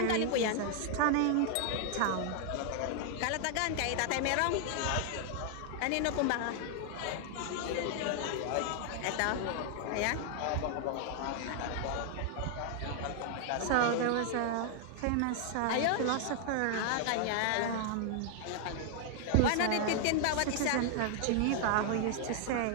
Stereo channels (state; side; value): different; both; correlation 0.00